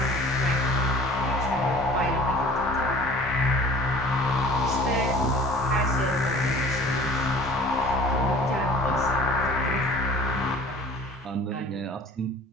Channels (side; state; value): both; normal; correlation 0.47